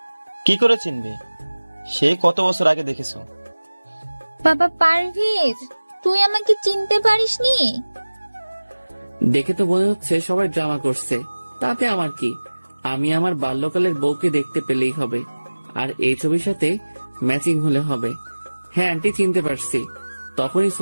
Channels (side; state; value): both; inverted; correlation -1.00